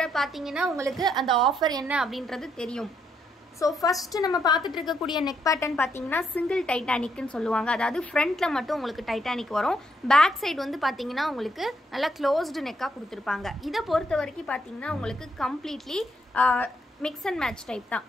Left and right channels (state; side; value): normal; both; correlation 0.75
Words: பார்த்தீங்கன்னா உங்களுக்கு அந்த ஆஃபர் என்ன அப்படின்றது தெரியும். ஸோ ஃபர்ஸ்ட் நம்ம பார்த்துட்டு இருக்கக்கூடிய நெக் பேட்டர்ன் பார்த்தீங்கன்னா சிங்கிள் டைட்டானிக்னு சொல்லுவாங்க. அதாவது ஃப்ரண்ட்ல மட்டும் உங்களுக்கு டைட்டானிக் வரும். பேக் சைடு வந்து பார்த்தீங்கன்னா உங்களுக்கு நல்லா க்ளோஸ்டு நெக்காக கொடுத்துருப்பாங்க. இதை பொறுத்த வரைக்கும் பார்த்தீங்கன்னா உங்களுக்கு completely mix and match type தான்.